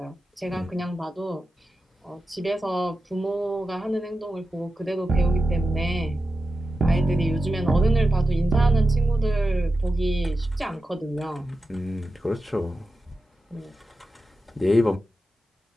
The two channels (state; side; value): normal; both; correlation 0.92